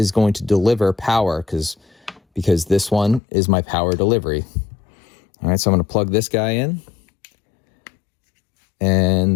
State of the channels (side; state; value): right; drops out; at 3.2 s